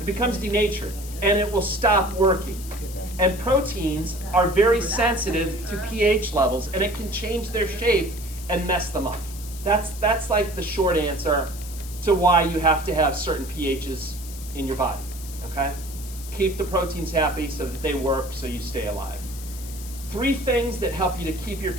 becomes denatured, and it will stop working. And proteins are very sensitive to pH levels, and it can change their shape and mess them up. That's like the short answer to why you have to have certain pHs in your body, okay? Keep the proteins happy so that they work so you stay alive. 3 things that help you to keep your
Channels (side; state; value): left; noise; hiss, 14 dB below the sound